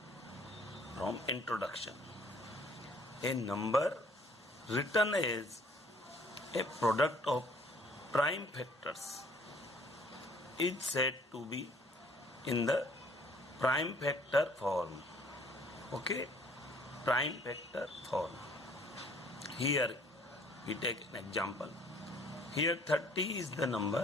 from introduction. A number written as a product of prime factors is said to be in the prime factor form. Okay, prime factor form. Here we take an example. Here 30 is the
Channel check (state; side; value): normal; both; correlation 0.57